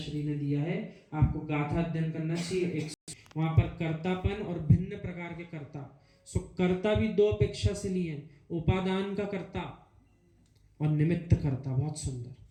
ने दिया है। आपको गाथा अध्ययन करना चाहिए। वहां पर कर्तापन और भिन्न प्रकार के कर्ता। सो कर्ता भी दो अपेक्षा से लिए, उपादान का कर्ता और निमित्त कर्ता। बहुत सुंदर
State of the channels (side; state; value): both; identical; correlation 1.00